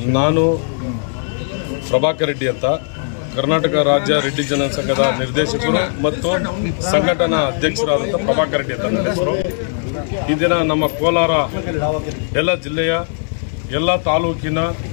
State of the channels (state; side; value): silent; right; digital silence